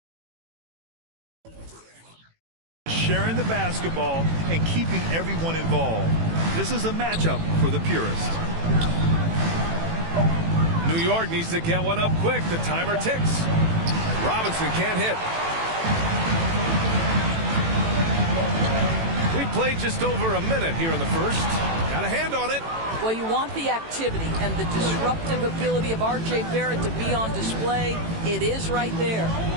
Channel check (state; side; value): late; left; 18 ms